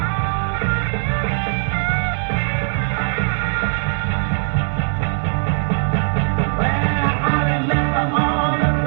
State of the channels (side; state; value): left; silent; digital silence